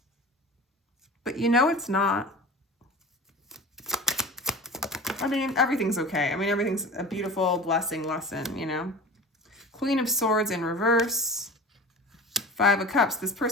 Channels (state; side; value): normal; both; correlation 0.35